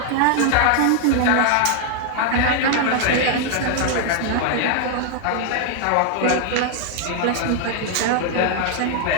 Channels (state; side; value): different; both; correlation 0.00